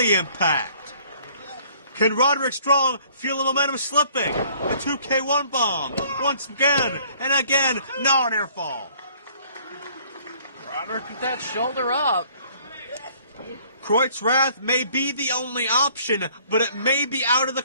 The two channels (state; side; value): inverted; both; correlation -0.58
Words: impact. Can Roderick Strong feel the momentum slipping? The 2K1 bomb. Once again, and again, no near fall. Roderick with that shoulder up. Kreut's Wrath may be the only option, but it may be out of the